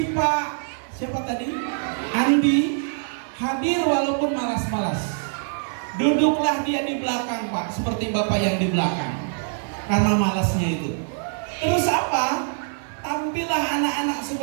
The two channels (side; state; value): left; silent; digital silence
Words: Pak, siapa tadi? Andi hadir walaupun malas-malas. Duduklah dia di belakang Pak, seperti Bapak yang di belakang, karena malasnya itu. Terus apa? Tampillah anak-anak